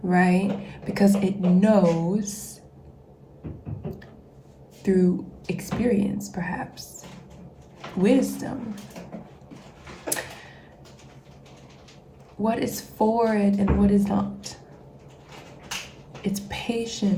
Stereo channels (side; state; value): both; identical; correlation 1.00